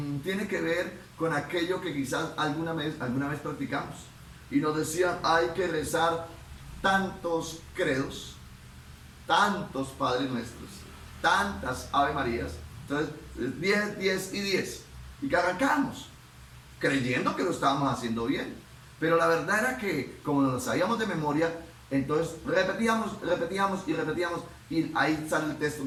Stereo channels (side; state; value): both; identical; correlation 1.00